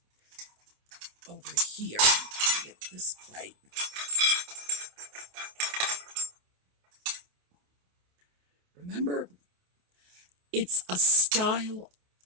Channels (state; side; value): late; left; 28 ms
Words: over here. Get this plate. Remember, it's a style